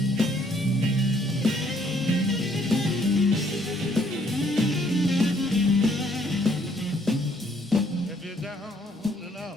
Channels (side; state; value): both; normal; correlation 0.66